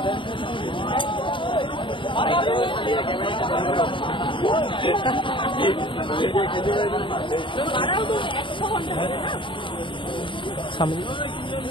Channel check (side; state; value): right; late; 0.24 ms